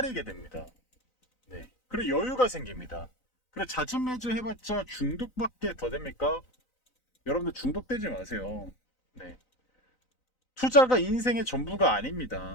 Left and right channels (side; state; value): right; late; 3.9 ms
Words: 됩니다. 네, 그리고 여유가 생깁니다. 그래 자진매주 해봤자 중독밖에 더 됩니까? 여러분들 중독되지 마세요. 네. 투자가 인생의 전부가